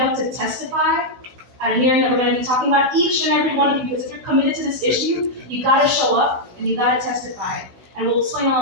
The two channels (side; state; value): left; late; 16 ms